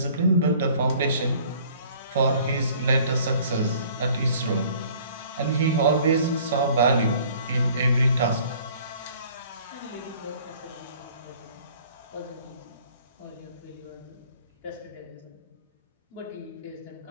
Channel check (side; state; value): both; inverted; correlation -0.54